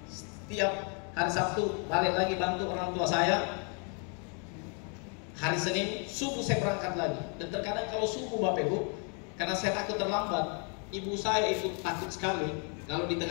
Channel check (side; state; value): right; quieter; 38.5 dB